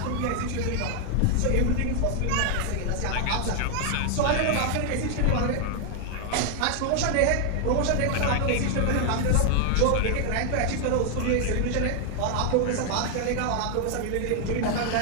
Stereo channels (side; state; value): both; different; correlation 0.00